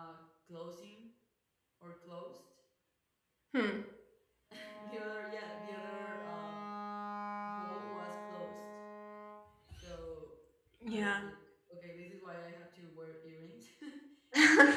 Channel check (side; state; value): both; identical; correlation 1.00